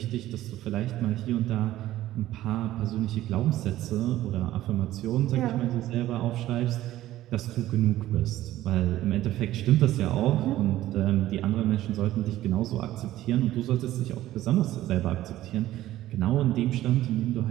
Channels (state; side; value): quieter; left; 14.5 dB